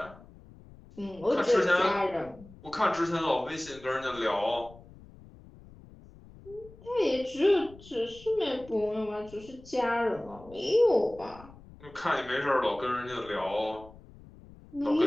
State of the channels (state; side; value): noise; left; rumble, 21 dB below the sound